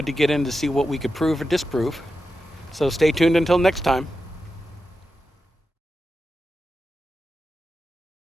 to get in to see what we could prove or disprove. So stay tuned until next time.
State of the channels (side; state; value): both; normal; correlation 0.90